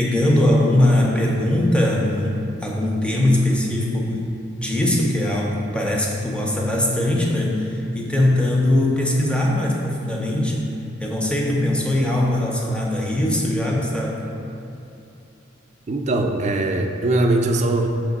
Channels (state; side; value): normal; both; correlation 0.76